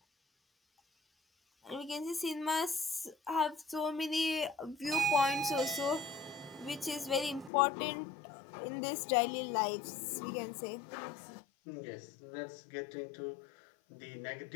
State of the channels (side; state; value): right; drops out; at 7.5 s